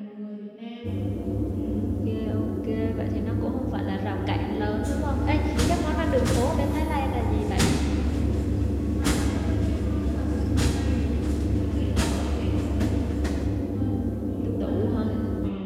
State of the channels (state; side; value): identical; both; correlation 1.00